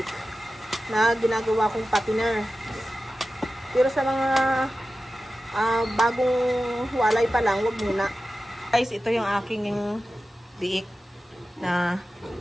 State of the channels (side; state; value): both; normal; correlation 0.94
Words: na ginagawa kong patiner. Pero sa mga bagong walay pa lang, wag muna. Guys, ito yung aking biik na